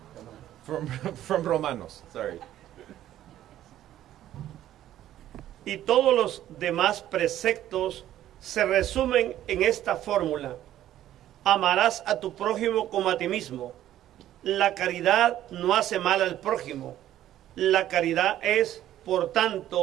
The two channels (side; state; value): left; quieter; 12.6 dB